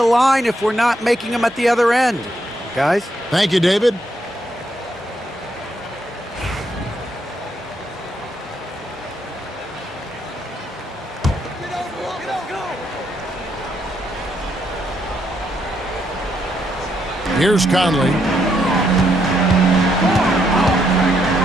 line if we're not making them at the other end. Guys? Thank you, David. Here's Conley.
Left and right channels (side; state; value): both; normal; correlation 0.76